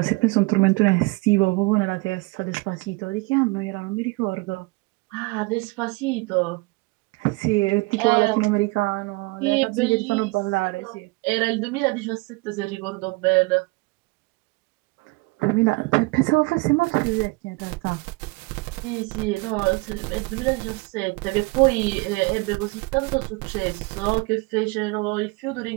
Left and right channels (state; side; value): quieter; left; 24.6 dB